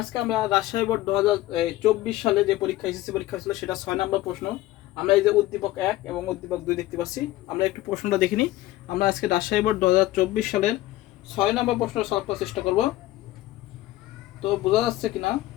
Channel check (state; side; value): quieter; right; 16.3 dB